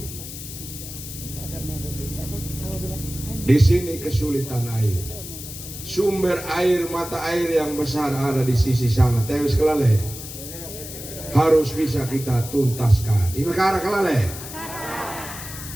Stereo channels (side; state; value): left; noise; hiss, 11 dB below the sound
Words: Di sini kesulitan air. Sumber air, mata air yang besar ada di sisi sana. Tewis kelale. Harus bisa kita tuntaskan. Ini perkara kelale.